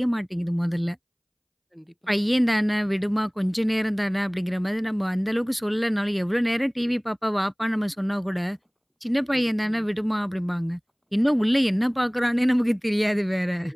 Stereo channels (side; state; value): both; identical; correlation 1.00